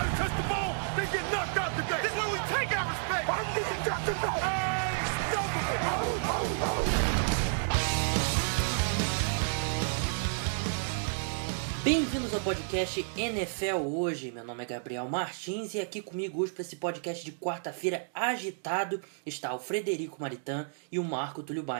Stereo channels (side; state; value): left; silent; digital silence